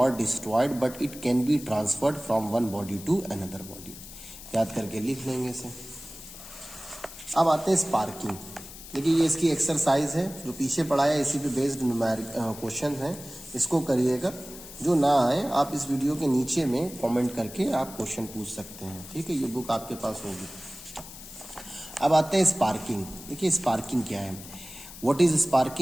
destroyed but it can be transferred from one body to another body. याद करके लिख लेंगे इसे। अब आते हैं स्पार्किंग। देखिए ये इसकी एक्सरसाइज है जो पीछे पढ़ाया, इसी पे बेस्ड न्यूमेरिक क्वेश्चन है, इसको करिएगा। जो ना आए आप इस वीडियो के नीचे में कमेंट करके आप क्वेश्चन पूछ सकते हैं। ठीक है, ये बुक आपके पास होगी। अब आते हैं स्पार्किंग। देखिए स्पार्किंग क्या है, what is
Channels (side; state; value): left; noise; hiss, 15 dB below the sound